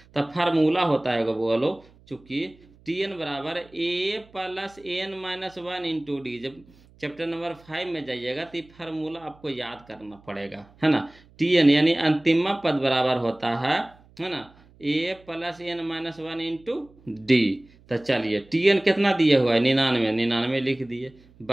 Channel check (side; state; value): right; noise; hum, 27 dB below the sound